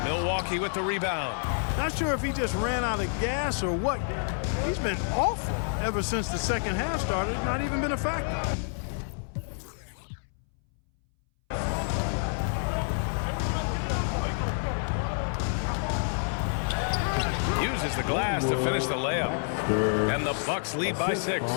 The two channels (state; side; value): silent; right; 59 dB below the other